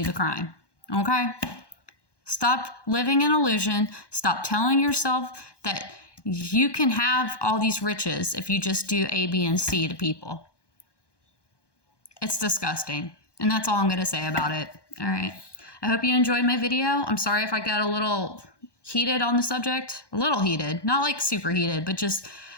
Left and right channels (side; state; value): right; late; 1.2 ms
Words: the crime, okay? Stop living in illusion. Stop telling yourself that you can have all these riches if you just do A, B, and C to people. It's disgusting. And that's all I'm going to say about it. All right. I hope you enjoyed my video. I'm sorry if I got a little heated on the subject. A little heated. Not like super heated, but just